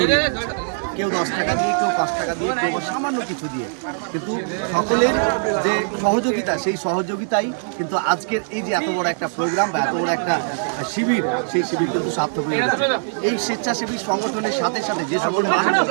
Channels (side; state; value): left; silent; digital silence